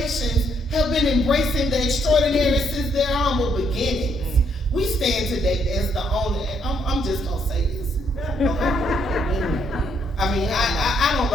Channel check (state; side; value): normal; both; correlation 0.72